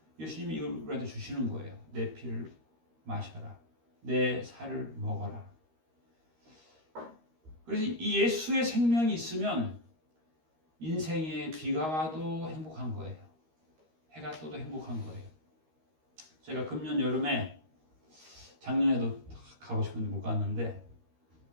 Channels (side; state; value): left; late; 13 ms